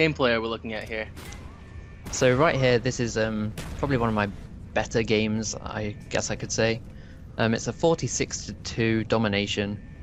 are we looking at here? So right here, this is probably one of my better games, I guess I could say. It's a 46-2 domination.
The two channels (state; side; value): identical; both; correlation 1.00